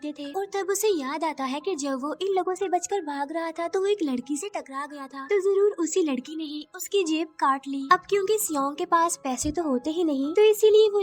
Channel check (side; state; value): both; identical; correlation 1.00